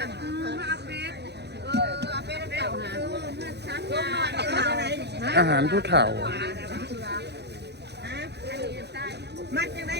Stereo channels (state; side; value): late; left; 0.49 ms